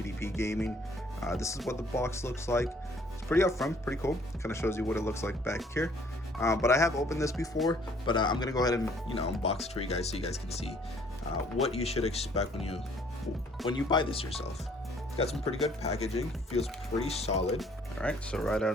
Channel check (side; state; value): both; normal; correlation 0.60